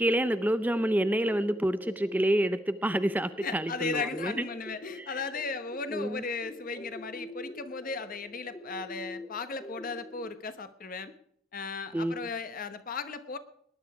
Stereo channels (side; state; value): both; normal; correlation 0.71